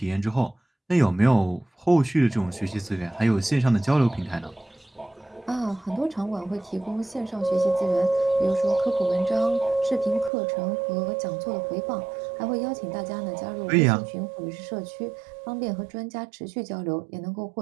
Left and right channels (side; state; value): left; drops out; at 10.3 s